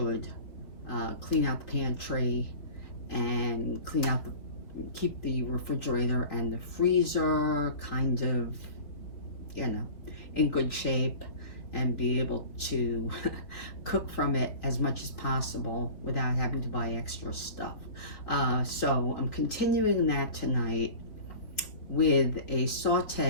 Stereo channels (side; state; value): right; late; 4.1 ms